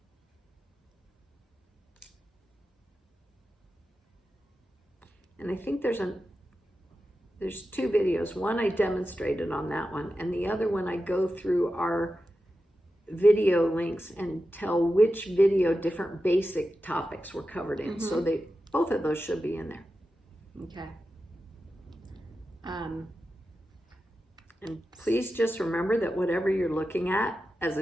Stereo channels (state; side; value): normal; both; correlation 0.91